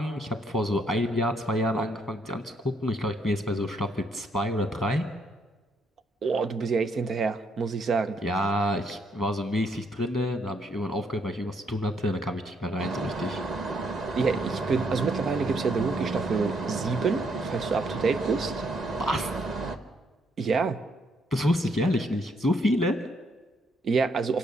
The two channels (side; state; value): both; normal; correlation 0.72